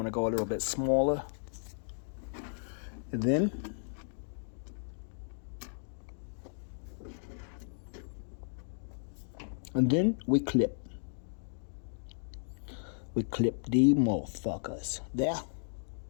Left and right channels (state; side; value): silent; right; digital silence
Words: to go a little bit smaller. And then we clip. We clip the motherfuckers. There.